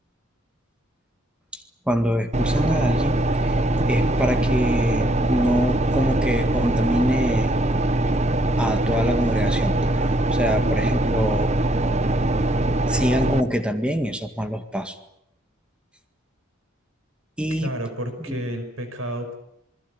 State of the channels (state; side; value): normal; both; correlation 0.70